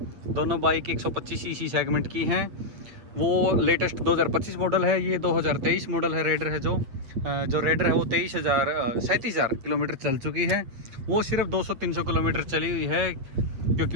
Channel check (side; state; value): left; late; 8.6 ms